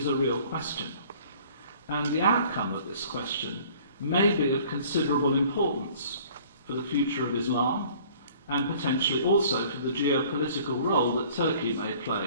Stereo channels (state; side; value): inverted; both; correlation -0.52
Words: a real question. And the outcome of this question may be of considerable importance for the future of Islam, and potentially also for the geopolitical role that Turkey may